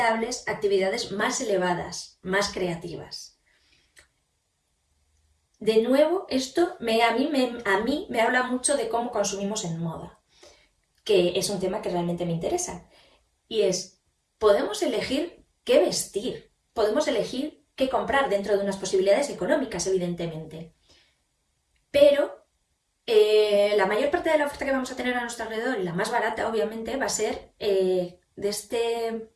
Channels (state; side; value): identical; both; correlation 1.00